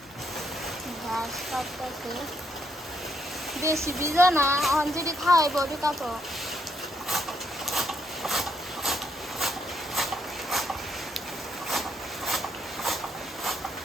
ঘাস কাটতেছে বেশি ভিজা না অঞ্জলি খাওয়াইব ঠিক আছে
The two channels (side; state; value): both; normal; correlation 0.75